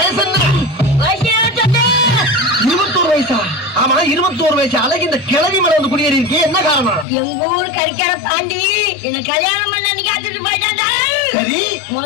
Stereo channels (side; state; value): right; drops out; at 7.1 s